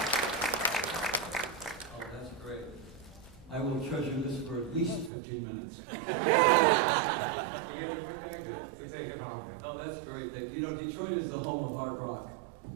that's great. I will treasure this for at least 15 minutes. We get it with that good to take it home. Oh, that's great. You know, Detroit is the home of hard rock.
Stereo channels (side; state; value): left; drops out; at 5.1 s